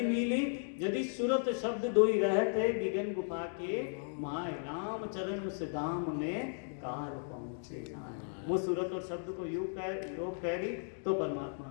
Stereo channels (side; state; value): right; silent; digital silence